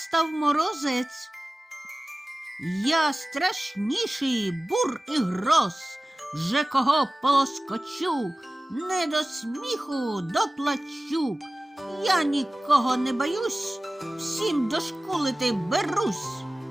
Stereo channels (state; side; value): normal; both; correlation 0.97